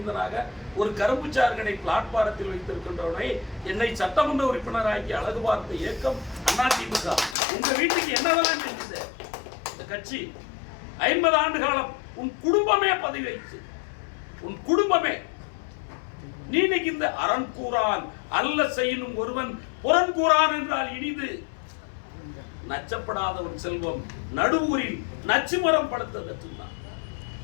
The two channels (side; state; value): right; drops out; at 7.4 s